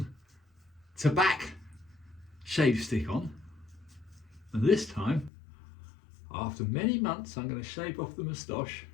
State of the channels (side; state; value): right; drops out; at 5.3 s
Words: tobacco shave stick on, and this time, after many months, I'm going to shave off the moustache